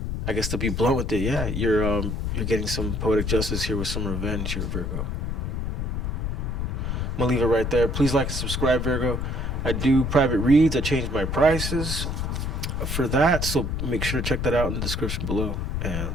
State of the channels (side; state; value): left; noise; rumble, 2 dB below the sound